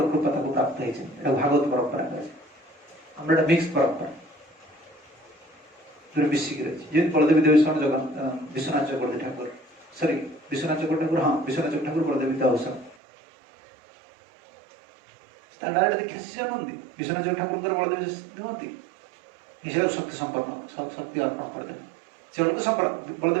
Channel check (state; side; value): drops out; left; at 13.0 s